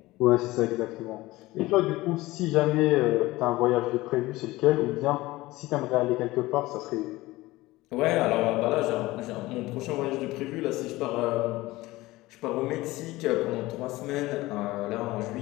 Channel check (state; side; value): quieter; right; 19.1 dB